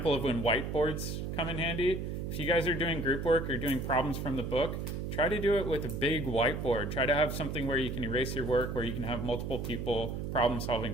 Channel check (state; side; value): noise; right; hum, 4 dB below the sound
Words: of when whiteboards come in handy. If you guys are doing group work or doing problems from the book, try to do it with a big whiteboard. Try to have something where you can erase your work, where you can have multiple people problem